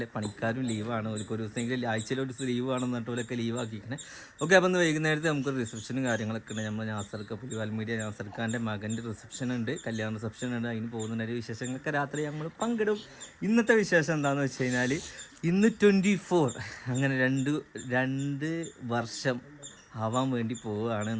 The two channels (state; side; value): identical; both; correlation 1.00